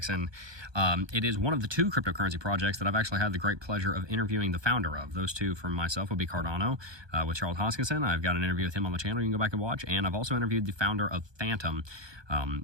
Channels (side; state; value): left; late; 1.2 ms